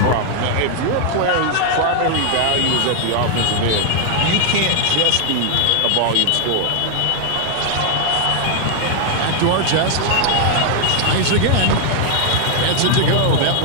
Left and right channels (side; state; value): both; different; correlation 0.00